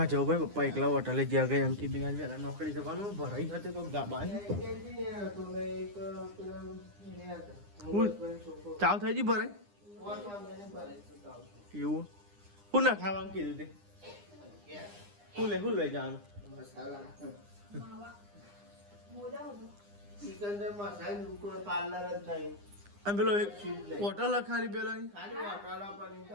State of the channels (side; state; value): left; late; 9.8 ms